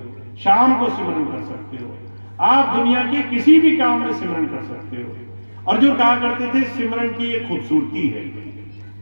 शाम को सिमरन कर सकते हो, आप दुनिया के किसी भी काम में सिमरन कर सकते हो। और जो कहा करते थे सिमरन की एक खूबसूरती है,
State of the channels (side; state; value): both; inverted; correlation -1.00